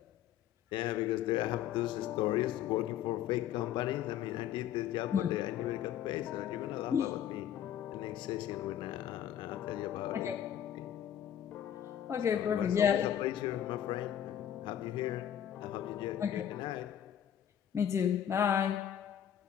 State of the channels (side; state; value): right; quieter; 10.2 dB